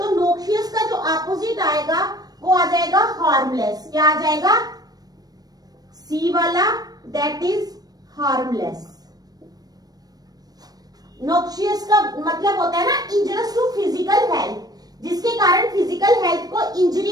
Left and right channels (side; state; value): left; late; 0.19 ms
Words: नोक्शियस का जो अपोजिट आएगा वो आ जाएगा हार्मलेस। क्या आ जाएगा? सी वाला, दैट इज हार्मलेस। नोक्शियस का मतलब होता है ना इंजरियस टू फिजिकल हेल्थ, जिसके कारण फिजिकल हेल्थ को